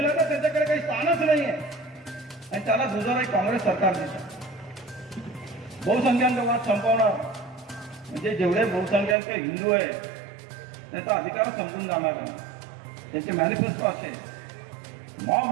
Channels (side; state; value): left; drops out; at 9.2 s